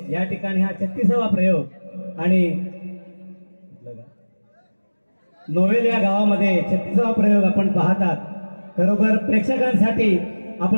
या ठिकाणी हा 36वा प्रयोग आणि नोवेल या गावामध्ये 36वा प्रयोग आपण पाहतात. खरोखर प्रेक्षकांसाठी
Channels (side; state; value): both; inverted; correlation -1.00